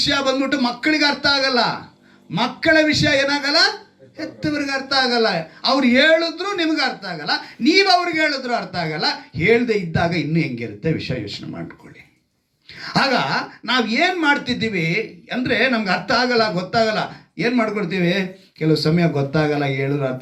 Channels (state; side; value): identical; both; correlation 1.00